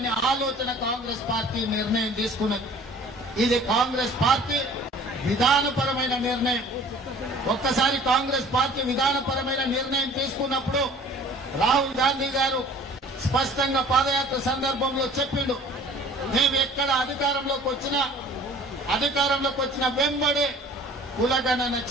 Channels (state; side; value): normal; both; correlation 0.49